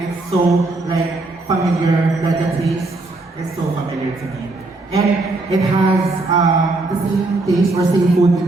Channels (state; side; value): quieter; left; 3.1 dB